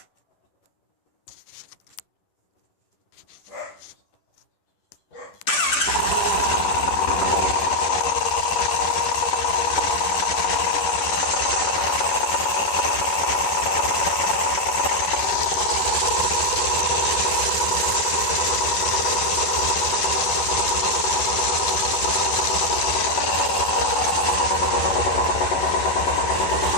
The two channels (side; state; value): right; late; 10 ms